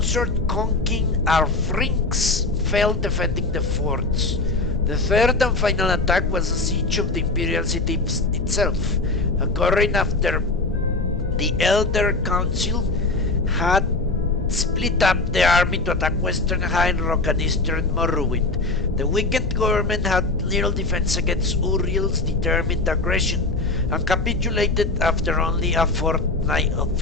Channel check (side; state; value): right; quieter; 3.3 dB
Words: King Arfrinx fell defending the forts. The third and final attack was a siege of the imperial city itself, occurring after the Elder Council had split up the army to attack western High Rock and eastern Morrowind. The weakened government had little defense against Uriel's determined aggression and capitulated after only a fortnight of